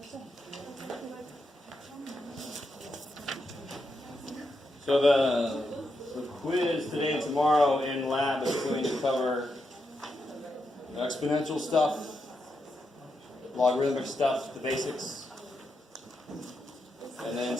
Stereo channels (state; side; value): normal; both; correlation 0.84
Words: So the quiz today and tomorrow in lab is going to cover exponential stuff, logarithmic stuff, the basics, and then